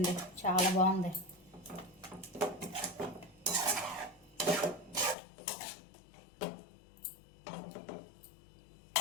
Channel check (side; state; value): right; drops out; at 5.2 s